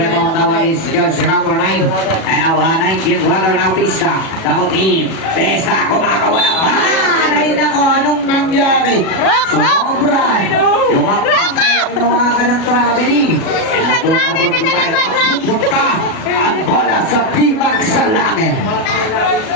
now is jersey number 9, and now 19 runner now Vista, double team, Vista kumakawa ng paraan, ay nako, anong nangyari? Sobra, yung ginawa ka ng traveling, and ang pupunta, ang bola sa timag sa langit.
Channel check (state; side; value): late; right; 37 ms